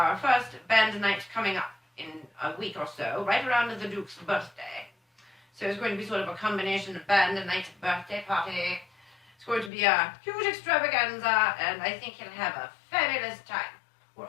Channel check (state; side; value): drops out; right; at 9.7 s